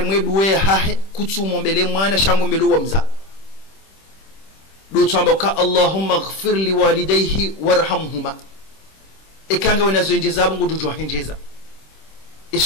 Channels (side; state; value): right; late; 26 ms